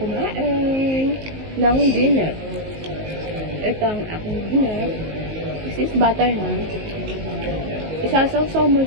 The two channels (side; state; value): left; late; 19 ms